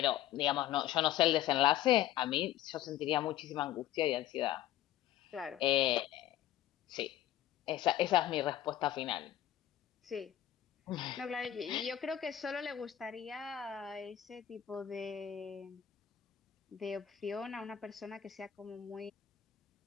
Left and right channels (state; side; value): quieter; right; 12.0 dB